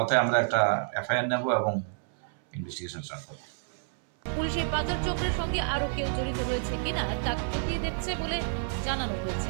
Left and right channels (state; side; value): silent; left; 59 dB below the other